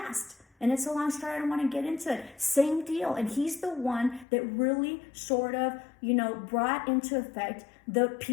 And it's a long story, I don't want to get into it. Same deal. And he's the one that really sort of, brought into effect the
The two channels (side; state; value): right; drops out; at 4.2 s